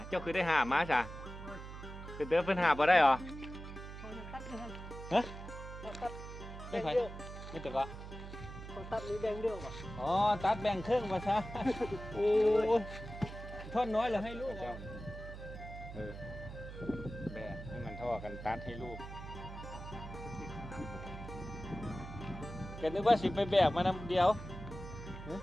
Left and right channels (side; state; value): right; noise; hum, 11 dB below the sound